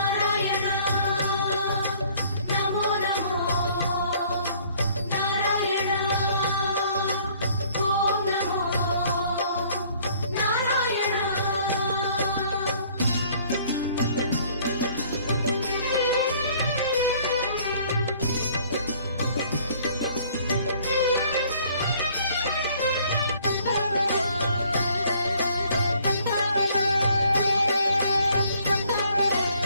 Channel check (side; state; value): both; inverted; correlation -0.58